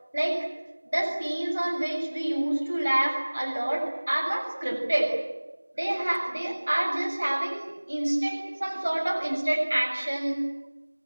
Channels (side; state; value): both; inverted; correlation -1.00